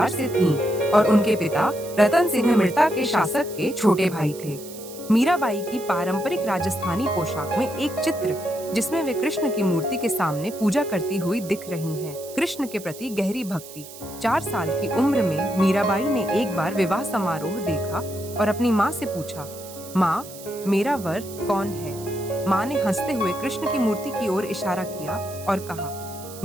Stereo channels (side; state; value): right; noise; hiss, 16 dB below the sound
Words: से थीं और उनके पिता रतन सिंह मिर्ता के शासक के छोटे भाई थे। मीराबाई की पारंपरिक राजस्थानी पोशाक में एक चित्र जिसमें वे कृष्ण की मूर्ति के सामने पूजा करती हुई दिख रही हैं। कृष्ण के प्रति गहरी भक्ति। 4 साल की उम्र में मीराबाई ने एक बार विवाह समारोह देखा और अपनी माँ से पूछा, माँ, मेरा वर कौन है? माँ ने हंसते हुए कृष्ण की मूर्ति की ओर इशारा किया और कहा,